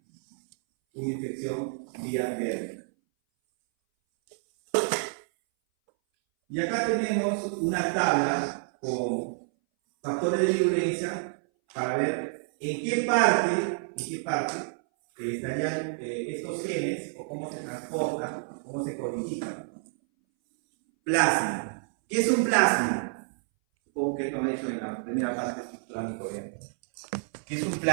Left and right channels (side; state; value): left; silent; 59 dB below the other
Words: una infección vía verde. Y acá tenemos una tabla con factores de virulencia para ver en qué parte estarían estos genes, o cómo se transportan, cómo se codifican. Plasma. ¿Qué es un plasma? Supongo que esto me he hecho en la primera parte estructural microbiana. ¿Qué es un